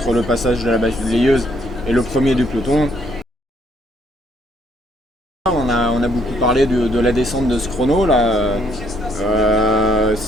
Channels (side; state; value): both; normal; correlation 0.69